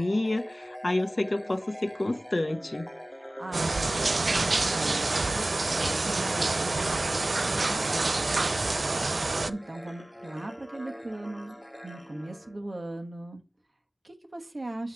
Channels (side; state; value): both; normal; correlation 0.97